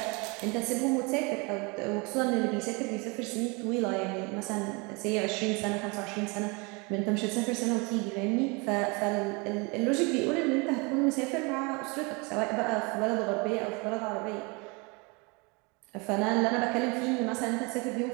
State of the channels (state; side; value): quieter; left; 29.2 dB